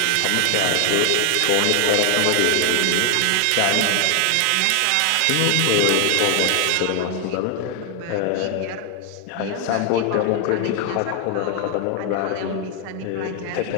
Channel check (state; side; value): different; both; correlation 0.00